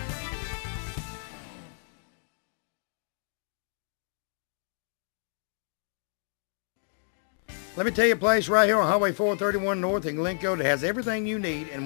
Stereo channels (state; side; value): silent; right; digital silence